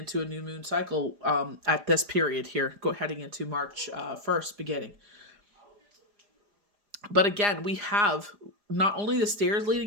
a new moon cycle at this period here, heading into March 1st beginning. But again, we have not only the stairs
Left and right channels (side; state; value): left; late; 4.9 ms